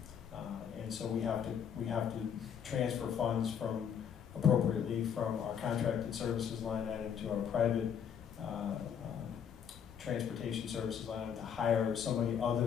and so we have to transfer funds appropriately from our contracted services line item to our private transportation services line item to hire somebody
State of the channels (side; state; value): right; quieter; 8.0 dB